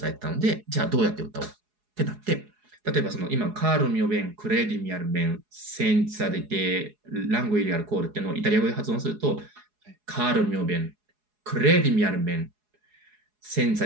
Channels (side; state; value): left; late; 4.8 ms